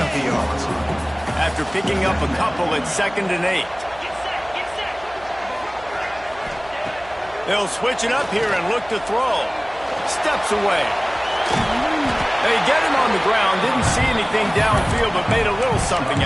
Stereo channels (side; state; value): right; noise; hum, 22 dB below the sound